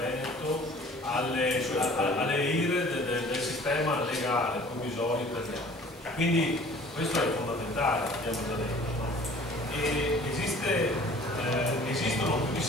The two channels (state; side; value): normal; both; correlation 0.50